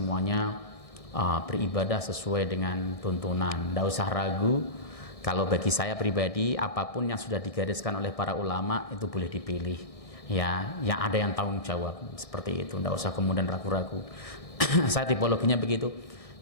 beribadah sesuai dengan tuntunan. Ndak usah ragu. Kalau bagi saya pribadi, apapun yang sudah digariskan oleh para ulama itu boleh dipilih. Ya, yang ada yang tanggung jawab seperti itu. Ndak usah kemudian ragu-ragu. Saya tipologinya begitu.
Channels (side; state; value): right; late; 1.6 ms